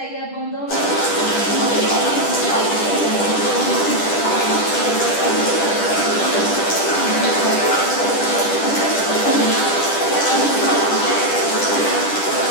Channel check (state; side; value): late; right; 10 ms